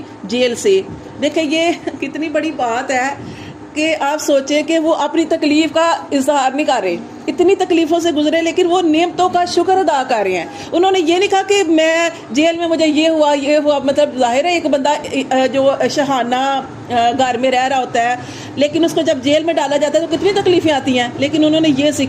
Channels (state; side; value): identical; both; correlation 1.00